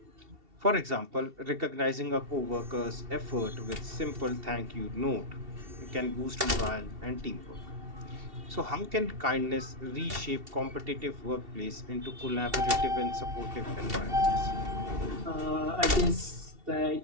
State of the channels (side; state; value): left; late; 2.7 ms